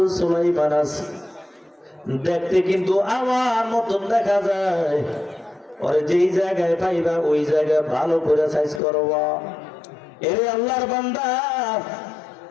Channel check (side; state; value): right; drops out; at 8.8 s